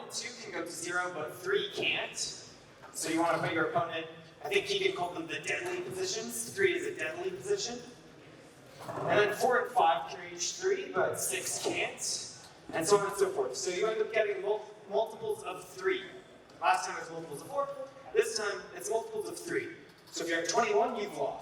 and 2 can go to 0, but 3 can't. So you want to put your opponent, I think Keegan called them the deadly positions. 3 is a deadly position. And then 4 and 5 can reach 3, but 6 can't. And so on and so forth. So you end up getting multiples of 3. Last time it was multiples of 4. This time it's multiples of 3. So if you're at 21, you've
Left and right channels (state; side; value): identical; both; correlation 1.00